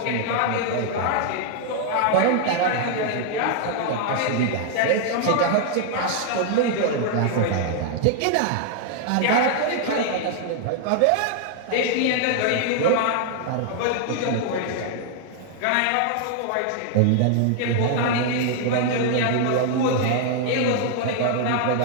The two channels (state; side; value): different; both; correlation 0.00